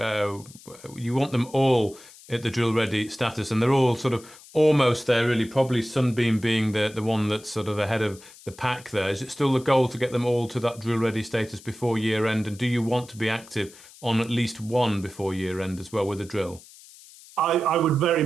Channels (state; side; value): noise; left; hiss, 21 dB below the sound